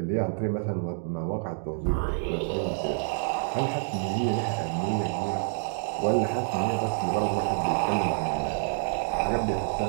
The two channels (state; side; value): silent; left; 59 dB below the other